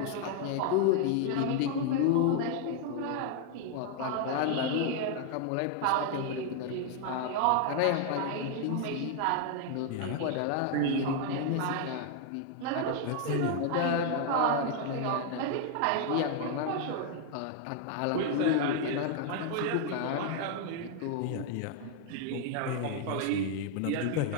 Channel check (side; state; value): both; different; correlation 0.00